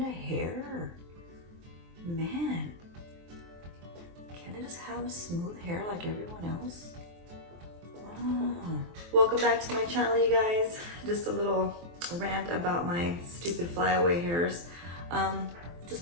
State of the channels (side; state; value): left; late; 23 ms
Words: of hair? Man, can't I just have smooth hair like everyone else? Ah. Welcome back to my channel, you guys. Just a little rant about my stupid flyaway hairs.